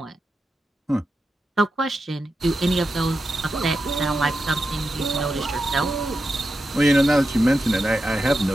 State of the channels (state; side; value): normal; both; correlation 0.89